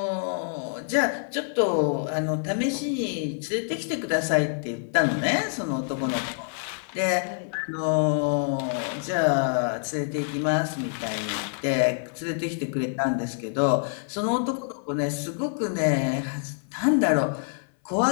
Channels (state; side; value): silent; right; 57 dB below the other